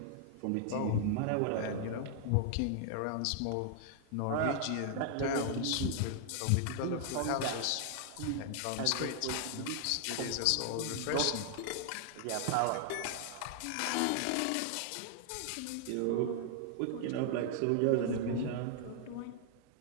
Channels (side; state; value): both; different; correlation 0.00